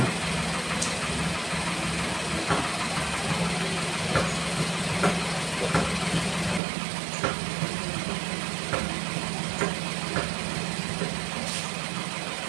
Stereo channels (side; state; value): left; drops out; at 6.6 s